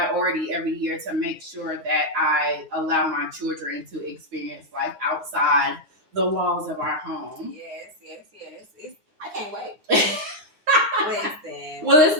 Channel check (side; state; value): left; late; 9.6 ms